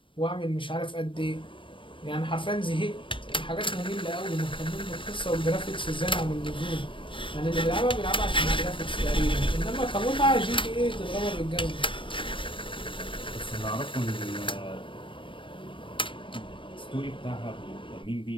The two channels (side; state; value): right; late; 0.25 ms